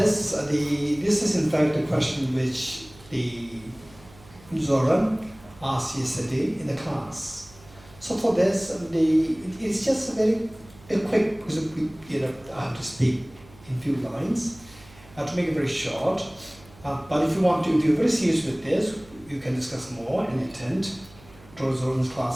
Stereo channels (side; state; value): right; noise; hum, 24 dB below the sound